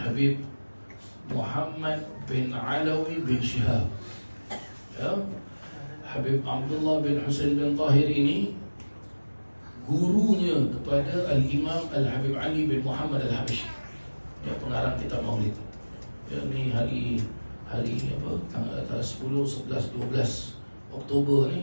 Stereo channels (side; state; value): both; inverted; correlation -1.00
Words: Muhammad bin Alawi bin Shihab, ya. Habib Abdullah bin Husain bin Tahir ini gurunya kepada Al-Imam Al-Habib Ali bin Muhammad Al-Habashi, ya, pengarang kitab Maulid. Ya, ni hari apa? Tanggal 10, 11, 12 Oktober